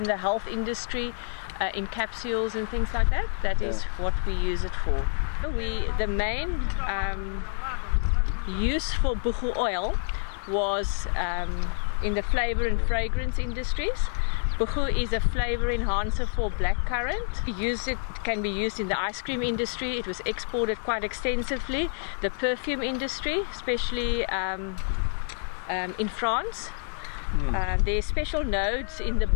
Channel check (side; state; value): right; silent; 57 dB below the other